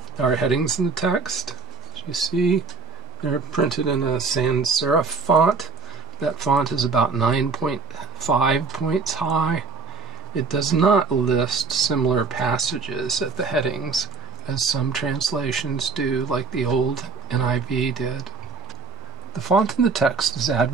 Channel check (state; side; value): quieter; left; 4.8 dB